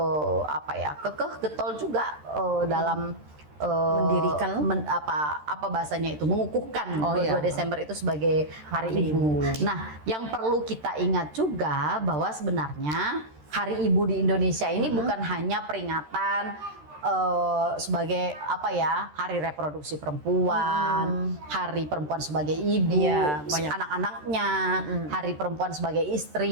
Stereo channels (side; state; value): left; late; 13 ms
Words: apa ya, kekeh getol juga dalam Mendirikan apa bahasanya itu, mengukuhkan 22 iya. Desember itu sebagai Hari Hari Ibu. Ibu. Nah, yang perlu kita ingat juga bahwa sebenarnya Hari Ibu di Indonesia ini bukan hanya peringatan sebagai apa ya, hari reproduksi perempuan, hari perempuan sebagai ibu, Iya, banyak. anak-anaknya, hari perempuan sebagai